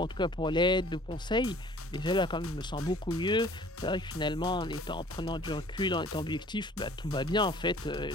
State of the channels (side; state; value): both; normal; correlation 0.51